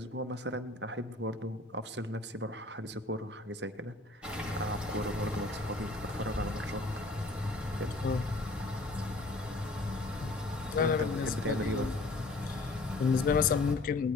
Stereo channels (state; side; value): quieter; right; 3.0 dB